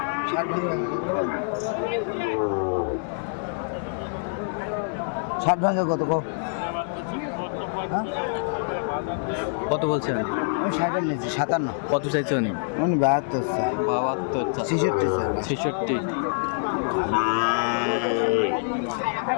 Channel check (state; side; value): silent; right; 61 dB below the other